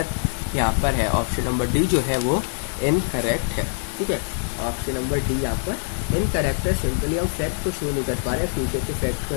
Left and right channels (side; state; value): right; silent; 63 dB below the other